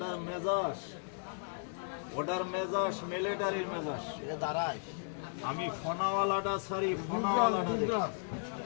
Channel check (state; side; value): silent; right; 54 dB below the other